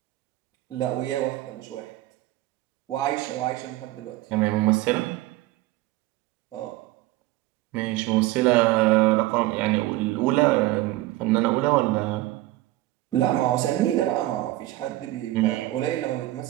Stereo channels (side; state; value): left; quieter; 17.1 dB